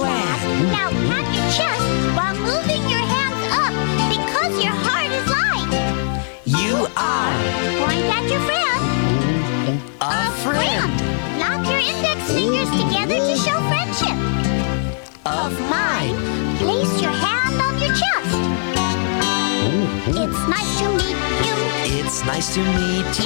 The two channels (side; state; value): right; silent; digital silence